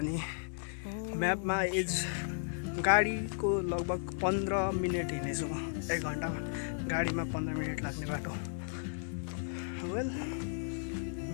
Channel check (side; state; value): right; silent; 55 dB below the other